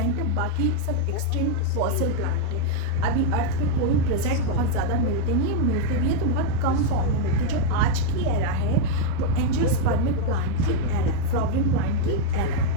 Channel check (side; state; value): both; different; correlation 0.00